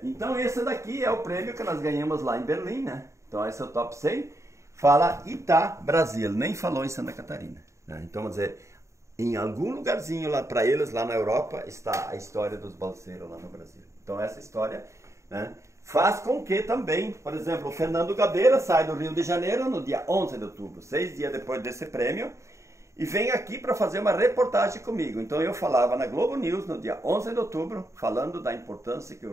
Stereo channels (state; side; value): late; left; 0.14 ms